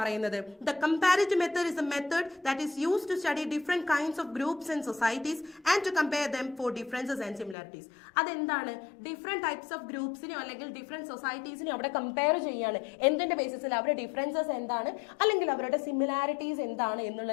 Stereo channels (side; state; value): right; drops out; at 7.6 s